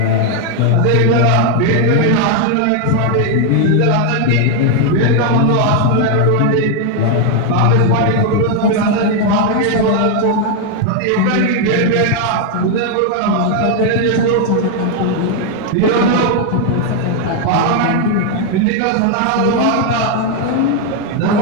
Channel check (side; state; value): both; different; correlation 0.01